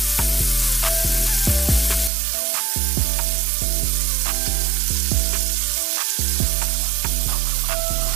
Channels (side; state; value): left; drops out; at 2.1 s